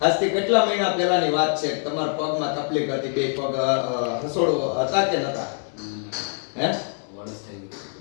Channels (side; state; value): right; silent; 60 dB below the other